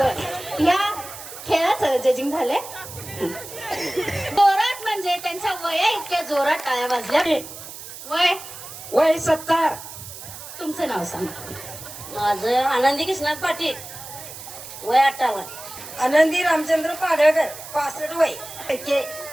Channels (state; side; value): noise; right; hiss, 13 dB below the sound